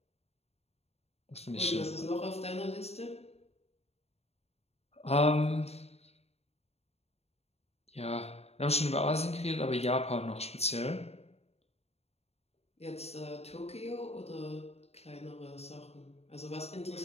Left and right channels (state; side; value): late; right; 0.30 ms